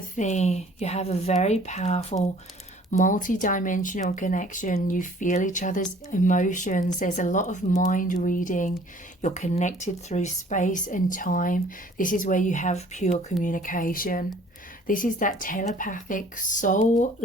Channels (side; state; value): both; normal; correlation 0.54